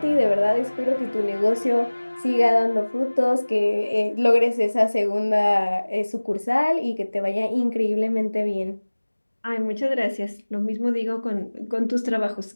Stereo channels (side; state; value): both; inverted; correlation -1.00